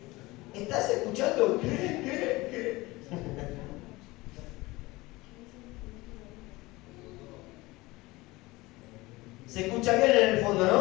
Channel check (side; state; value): right; quieter; 21.0 dB